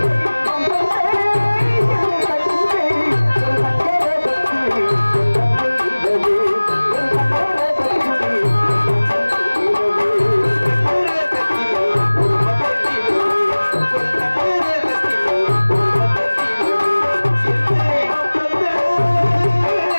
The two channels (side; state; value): both; inverted; correlation -1.00